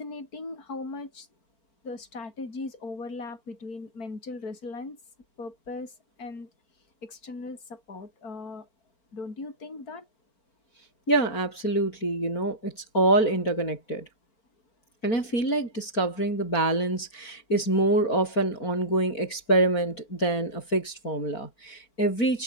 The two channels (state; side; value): late; right; 4.4 ms